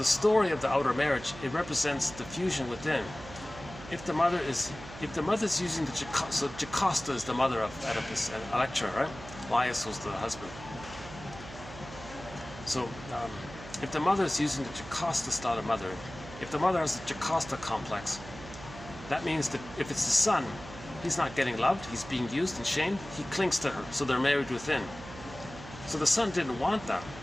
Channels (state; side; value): noise; right; hum, 14 dB below the sound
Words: story of the outer marriage, it represents the fusion within. If the mother's using the Jocasta, so Jocasta is the mother of Oedipus and Electra, right? Laius was the husband. So if the mother is using the Jocasta style of mother, if the mother has the Jocasta complex, that means that if it's the son, he's not getting loved, he's being used and shamed, he clings to her, so they're married within. So the son didn't want that.